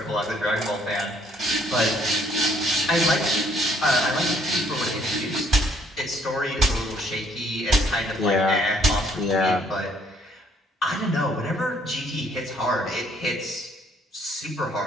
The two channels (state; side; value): normal; both; correlation 0.65